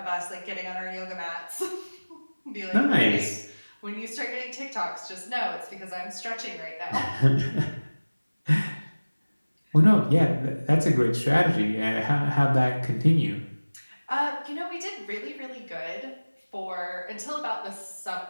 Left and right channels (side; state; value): both; inverted; correlation -1.00